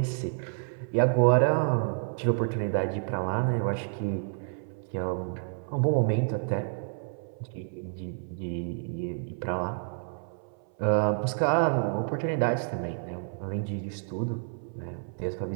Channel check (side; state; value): left; silent; 58 dB below the other